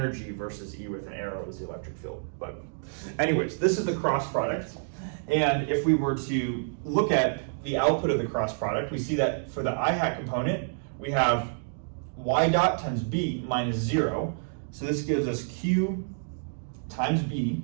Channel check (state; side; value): silent; left; digital silence